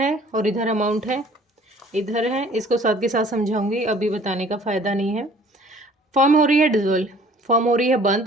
और इधर अमाउंट है, इधर है। इसको साथ के साथ समझाऊंगी, अभी बताने का फ़ायदा नहीं है। फॉर्म हो रही है डिजोल्व, फॉर्म हो रही है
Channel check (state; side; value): normal; both; correlation 0.53